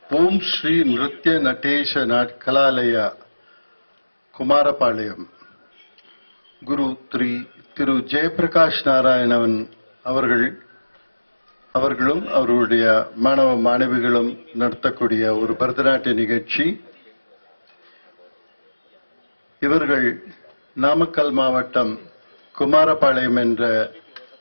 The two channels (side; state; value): both; inverted; correlation -1.00